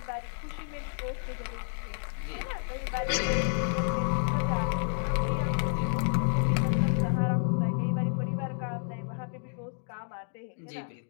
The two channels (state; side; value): silent; right; 58 dB below the other